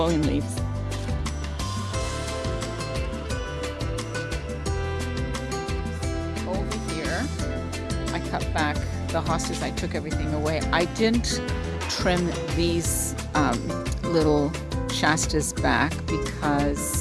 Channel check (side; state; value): both; identical; correlation 1.00